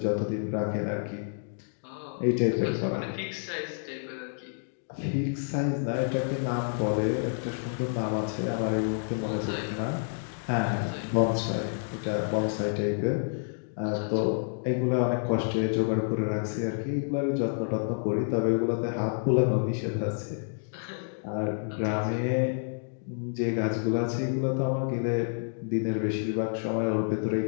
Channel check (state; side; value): silent; right; digital silence